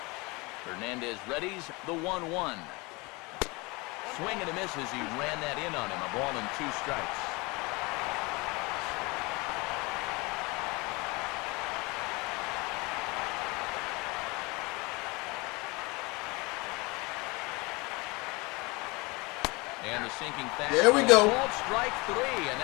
Hernandez readies the 1-1. Swing and a miss as he ran that in on him. A ball and 2 strikes. And the sinking fastball. There we go. Called strike 3, and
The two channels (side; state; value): right; quieter; 25.6 dB